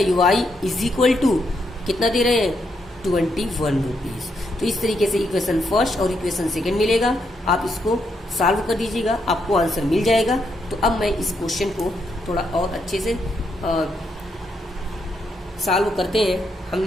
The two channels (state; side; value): normal; both; correlation 0.79